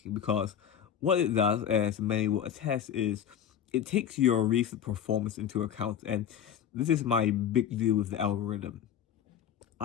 because what it does, as many will attest, is it takes your recent performance into account, and this is my big deal with the algorithm.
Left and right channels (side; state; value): right; quieter; 9.2 dB